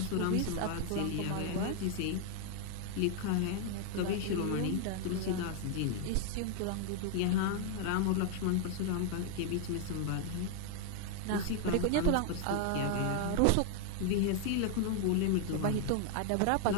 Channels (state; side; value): different; both; correlation 0.00